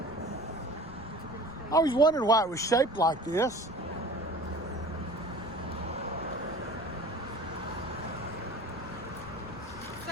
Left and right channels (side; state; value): left; noise; rumble, 18 dB below the sound